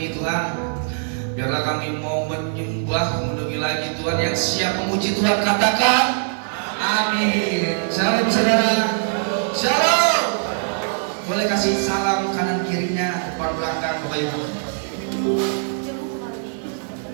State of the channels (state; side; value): silent; left; digital silence